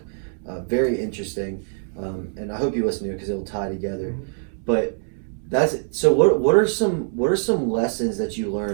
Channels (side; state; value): left; silent; 63 dB below the other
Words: Very interesting. And I hope you listen to it because it'll tie together. But that's it. So what are some lessons that you